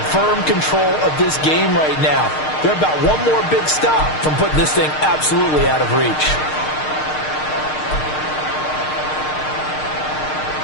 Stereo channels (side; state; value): right; late; 6.5 ms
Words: firm control of this game right now. They're about 1 more big stop from putting this thing absolutely out of reach.